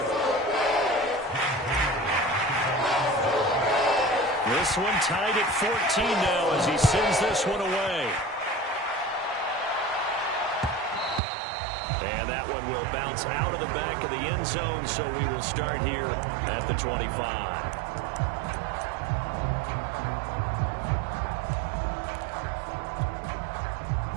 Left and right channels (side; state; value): left; drops out; at 11.2 s